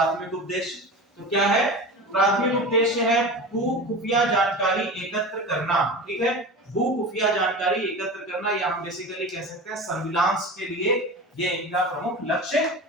उद्देश्य तो क्या है? प्राथमिक उद्देश्य है भू खुफिया जानकारी एकत्र करना। ठीक है, भू खुफिया जानकारी एकत्र करना, या हम बेसिकली कह सकते हैं सर्विलांस के लिए ये इनका प्रमुख लक्ष्य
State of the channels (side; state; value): both; normal; correlation 0.30